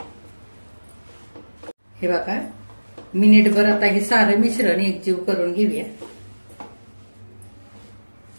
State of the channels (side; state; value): both; inverted; correlation -1.00